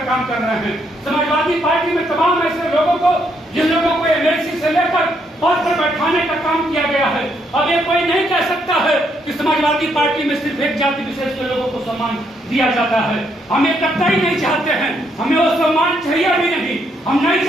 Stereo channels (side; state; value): both; normal; correlation 0.74